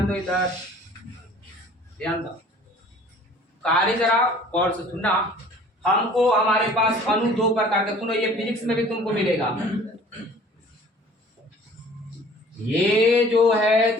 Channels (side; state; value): both; normal; correlation 0.50